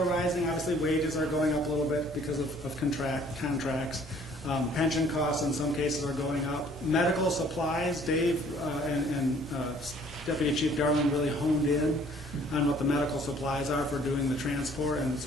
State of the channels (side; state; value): both; normal; correlation 0.57